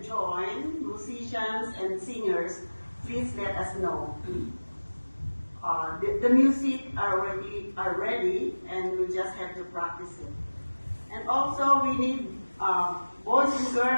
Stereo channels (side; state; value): both; inverted; correlation -1.00